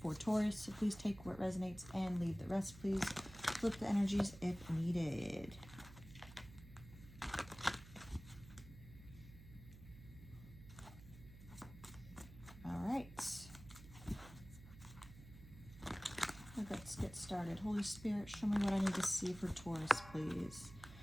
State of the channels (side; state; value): right; noise; hum, 17 dB below the sound